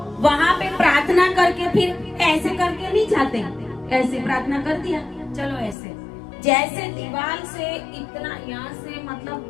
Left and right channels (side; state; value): right; drops out; at 5.8 s